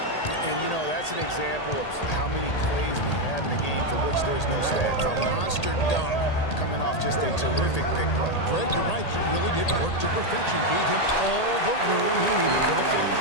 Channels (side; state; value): right; late; 1.8 ms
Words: And, that's an example of how many plays we have in a game for which there's no stats. A monster dunk coming off just a terrific big play. Greg, you're right. He really did work to perfection. Gave him all the room he needed for the finish.